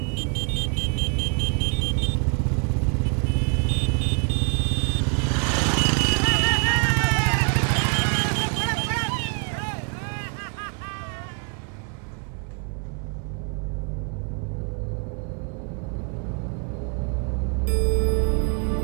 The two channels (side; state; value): left; quieter; 39.6 dB